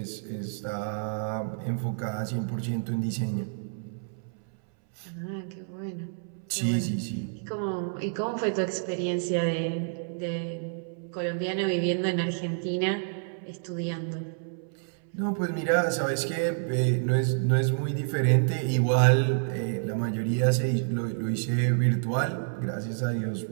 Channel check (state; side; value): silent; left; 59 dB below the other